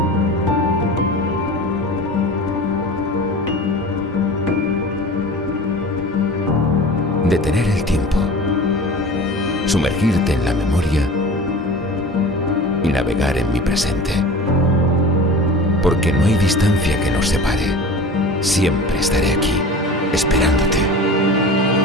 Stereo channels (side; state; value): both; normal; correlation 0.37